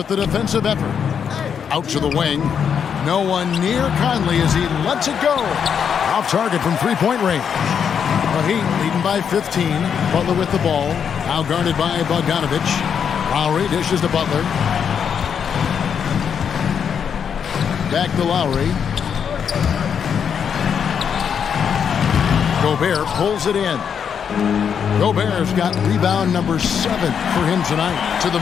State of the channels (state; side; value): quieter; right; 7.4 dB